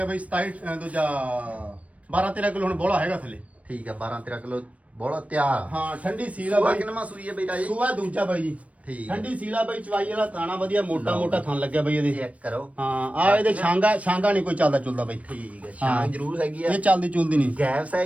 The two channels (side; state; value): left; late; 0.066 ms